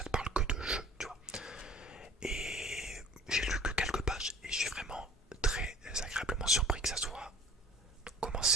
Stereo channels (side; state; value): both; normal; correlation 0.47